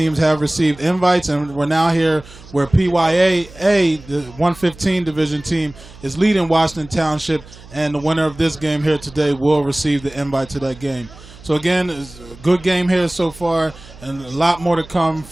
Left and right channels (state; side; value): noise; right; hum, 20 dB below the sound